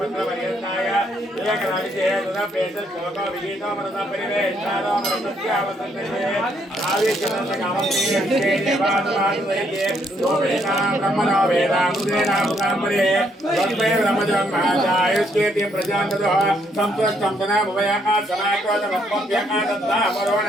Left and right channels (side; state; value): both; normal; correlation 0.72